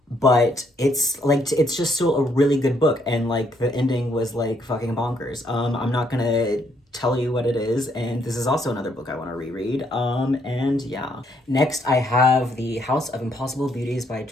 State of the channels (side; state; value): both; normal; correlation 0.71